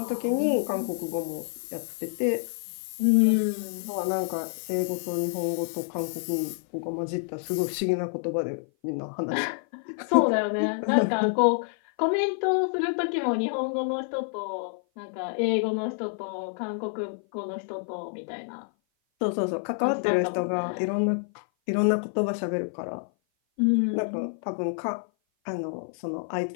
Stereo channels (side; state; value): right; silent; 56 dB below the other